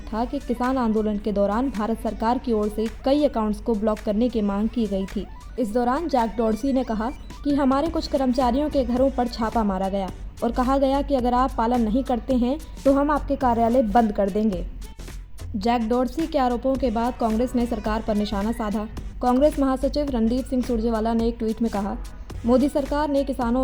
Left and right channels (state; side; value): identical; both; correlation 1.00